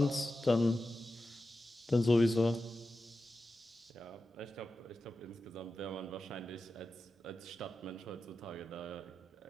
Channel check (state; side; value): normal; both; correlation 0.92